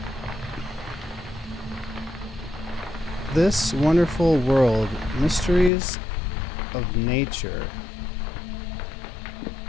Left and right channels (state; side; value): drops out; right; at 5.7 s